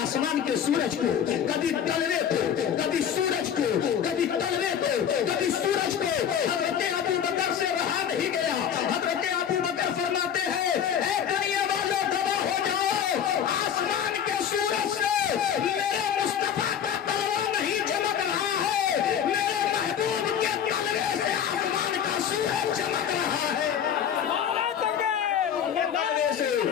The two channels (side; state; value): right; quieter; 8.7 dB